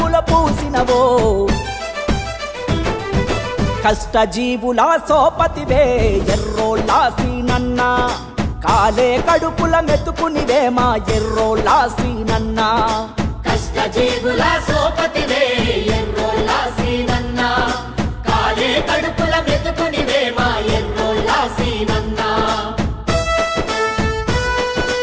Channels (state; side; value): identical; both; correlation 1.00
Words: పూసినవో కష్టజీవుల సోపతివే ఎర్రోళ్ళ సీనన్న కాలే కడుపుల మెతుకునివే మా ఎర్రోళ్ళ సీనన్న కష్టజీవుల సోపతివే ఎర్రోళ్ళ సీనన్న కాలే కడుపుల మెతుకునివే మా ఎర్రోళ్ళ సీనన్న